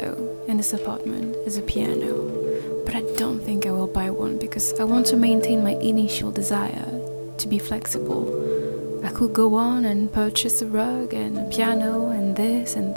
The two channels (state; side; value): inverted; both; correlation -1.00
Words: in this apartment is a piano, but I don't think I will buy one because I want to maintain my initial desire to be flexible. I could go on and purchase a rug and a piano and this and